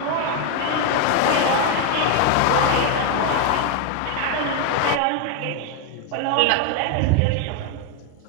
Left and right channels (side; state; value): both; different; correlation 0.01